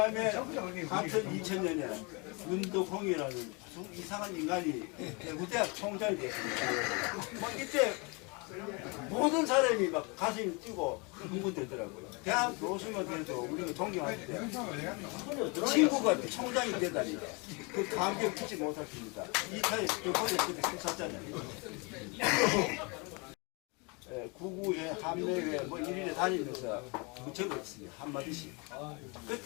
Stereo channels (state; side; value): quieter; right; 30.2 dB